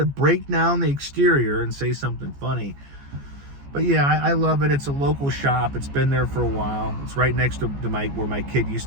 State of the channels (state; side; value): late; left; 14 ms